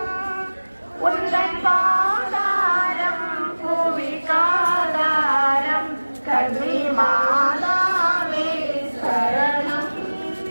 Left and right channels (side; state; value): both; inverted; correlation -1.00